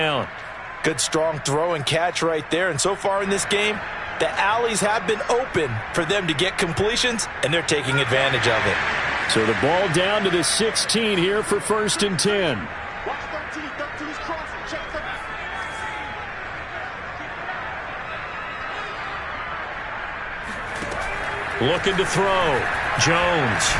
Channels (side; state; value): both; identical; correlation 1.00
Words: Good strong throw and catch right there. And so far in this game, the alleys have been open for them to get completions, and they're taking advantage of it. So the ball down to the 16 here for 1st and 10. Looking to throw. Jones.